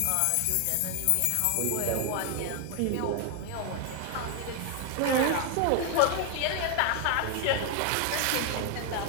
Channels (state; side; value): different; both; correlation 0.00